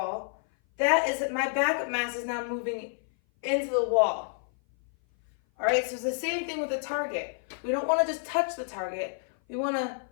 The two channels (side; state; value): right; silent; 56 dB below the other